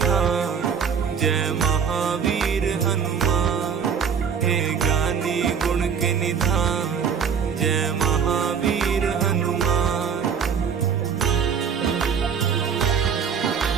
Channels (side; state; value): left; quieter; 6.9 dB